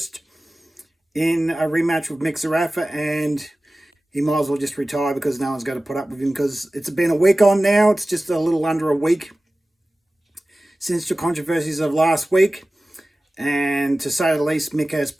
in a rematch with Zerafa, and he might as well just retire because no one's going to put up with him, because it's been a week on now. It's just a little under a week since the controversies of last week, and to say the least, Mick has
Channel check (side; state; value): both; normal; correlation 0.97